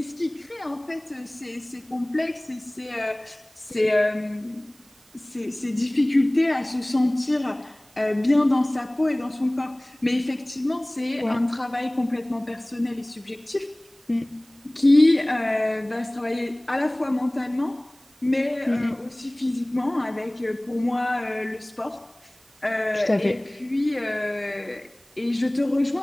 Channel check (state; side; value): noise; right; hiss, 29 dB below the sound